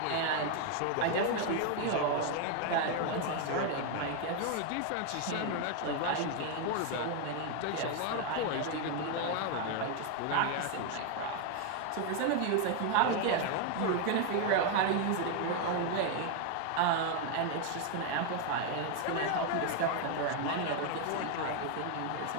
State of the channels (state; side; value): different; both; correlation 0.01